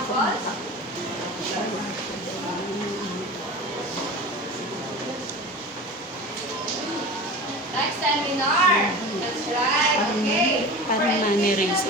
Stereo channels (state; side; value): normal; both; correlation 0.34